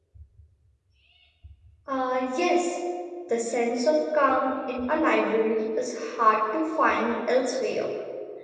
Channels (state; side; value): identical; both; correlation 1.00